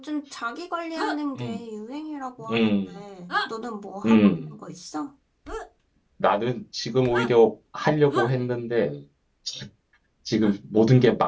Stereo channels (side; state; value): both; identical; correlation 1.00